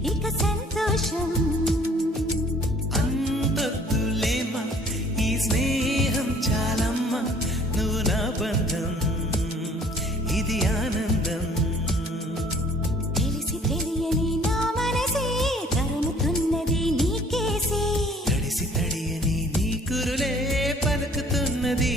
ఇక సంతోషం. అంతొద్దులేమా ఈ స్నేహం చాలమ్మా, నువ్వు నా బంధం ఇది ఆనందం. తెలిసి తెలియని నా మనసే తరుముతున్నది నీకేసే, తడిసి తడియని నీ కురులే పలుకుతున్నది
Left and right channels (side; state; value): both; normal; correlation 0.54